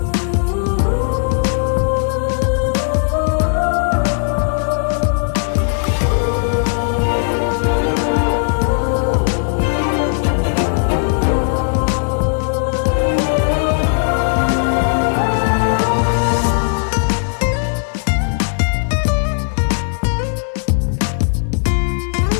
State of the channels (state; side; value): silent; right; 66 dB below the other